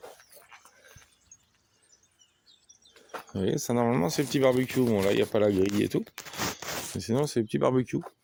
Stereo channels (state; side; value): identical; both; correlation 1.00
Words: Vous voyez, ça normalement c'est le petit barbecue. Bon là il n'y a pas la grille et tout. Mais sinon c'est le petit barbecue.